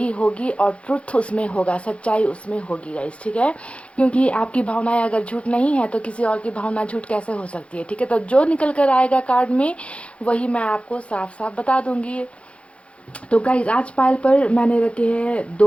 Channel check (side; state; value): right; late; 0.061 ms